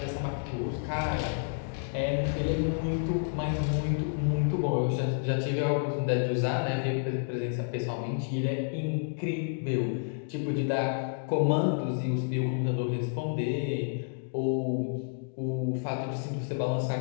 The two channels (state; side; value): silent; right; digital silence